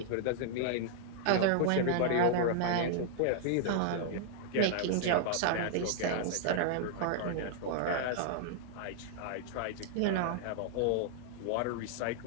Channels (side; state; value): both; different; correlation -0.01